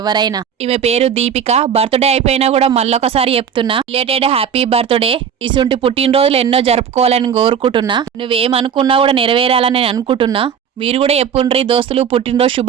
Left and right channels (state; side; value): quieter; left; 7.8 dB